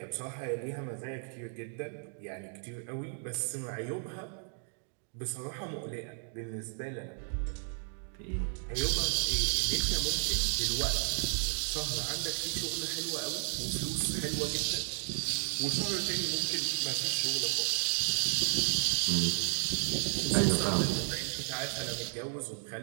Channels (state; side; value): silent; left; 55 dB below the other